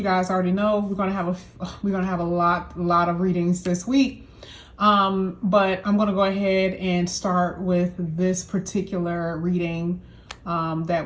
guys already know we're going to have a lot of readings this week. But I'm going to go ahead and start with this particular reading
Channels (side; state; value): both; identical; correlation 1.00